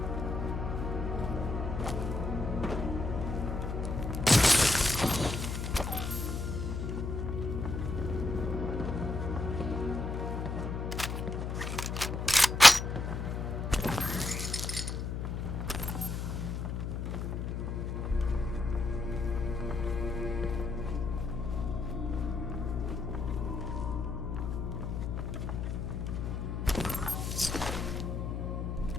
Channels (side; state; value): left; noise; hum, 3 dB below the sound